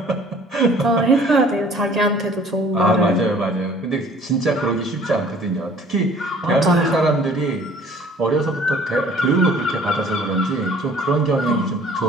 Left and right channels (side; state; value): both; normal; correlation 0.53